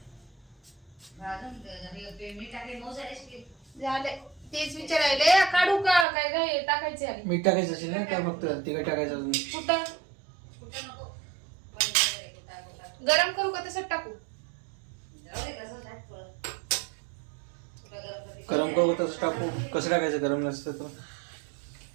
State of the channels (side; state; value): left; drops out; at 6.1 s